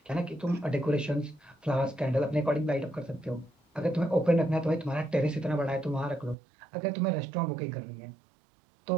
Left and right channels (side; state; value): left; drops out; at 6.4 s